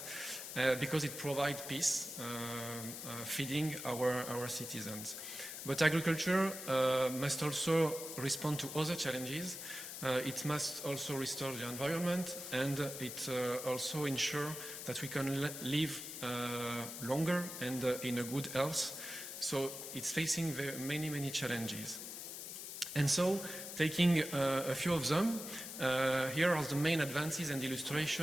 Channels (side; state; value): left; noise; hiss, 8 dB below the sound